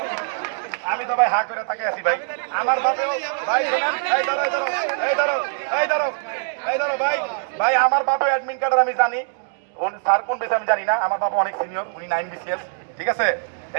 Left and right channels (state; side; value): silent; left; digital silence